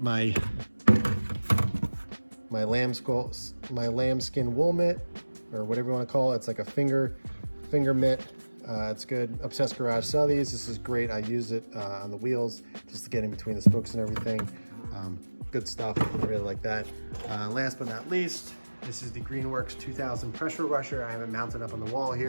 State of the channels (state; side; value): inverted; both; correlation -1.00